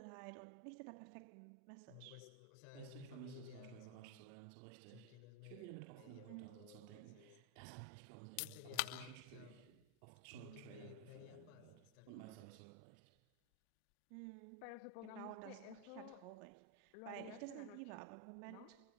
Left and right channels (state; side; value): different; both; correlation 0.01